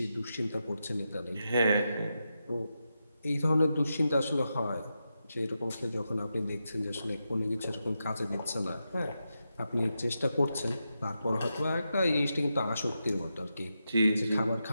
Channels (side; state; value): both; inverted; correlation -0.88